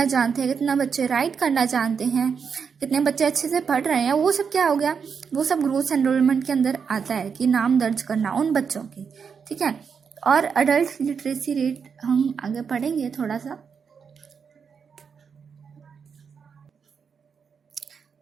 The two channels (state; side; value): quieter; left; 6.3 dB